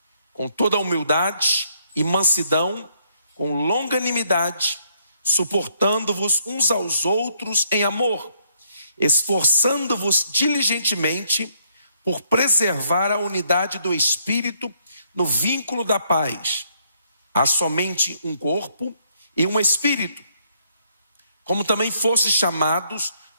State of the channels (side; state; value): both; inverted; correlation -0.70